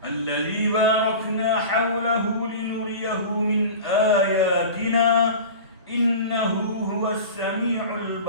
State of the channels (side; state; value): both; inverted; correlation -0.34